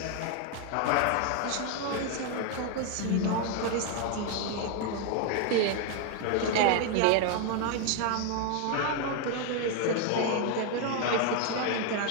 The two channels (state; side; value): different; both; correlation 0.00